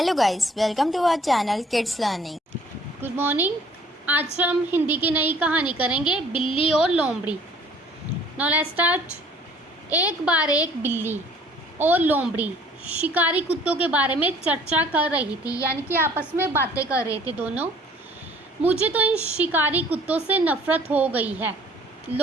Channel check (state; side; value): normal; both; correlation 0.55